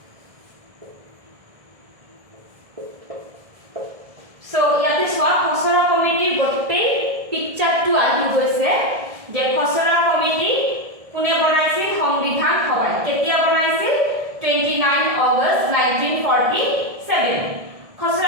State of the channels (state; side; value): late; left; 1.6 ms